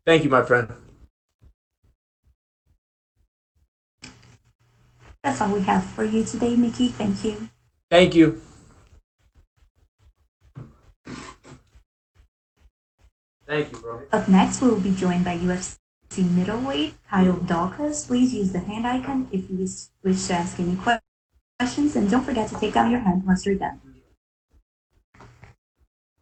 Thank you, my friend. That's all we have for you today, Mickey. Thank you. Thank you. Thank you, bro. Up next, we will be joined by UFC middleweight Kyle Dawkins. Please use the hand icon if you wish to ask any questions, and don't forget to take down your hand once you're done.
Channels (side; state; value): both; identical; correlation 1.00